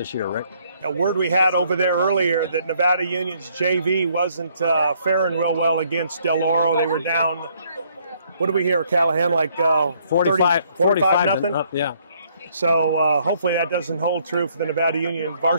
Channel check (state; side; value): inverted; both; correlation -0.67